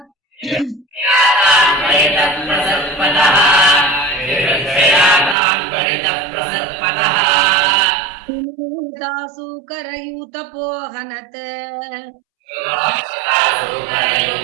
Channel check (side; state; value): left; drops out; at 5.4 s